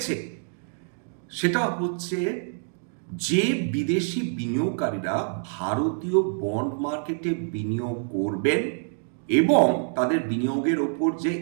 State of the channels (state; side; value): silent; left; digital silence